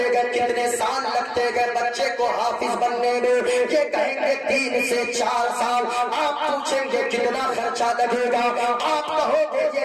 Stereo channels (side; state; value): both; identical; correlation 1.00